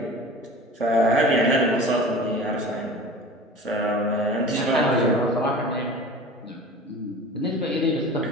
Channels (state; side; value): normal; both; correlation 0.39